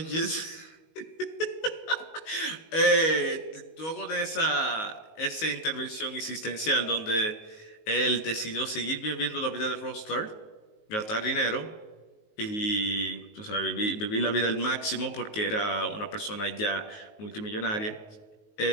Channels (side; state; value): right; late; 19 ms